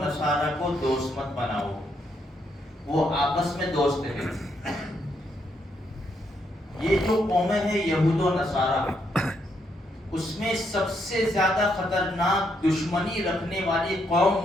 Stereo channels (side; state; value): both; normal; correlation 0.76